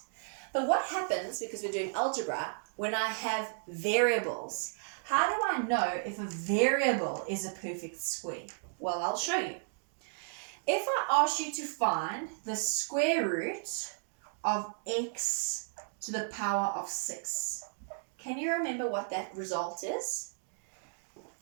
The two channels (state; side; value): silent; left; digital silence